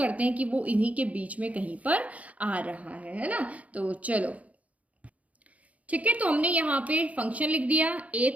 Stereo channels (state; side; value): late; left; 0.068 ms